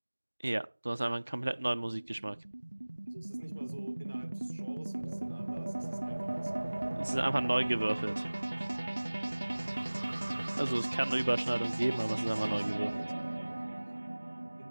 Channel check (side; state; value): both; inverted; correlation -1.00